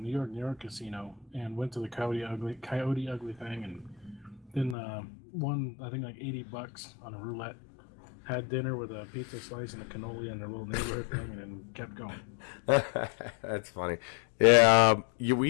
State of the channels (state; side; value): drops out; right; at 4.8 s